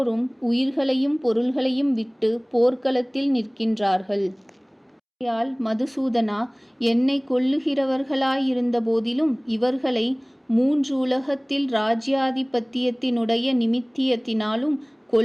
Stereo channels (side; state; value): both; identical; correlation 1.00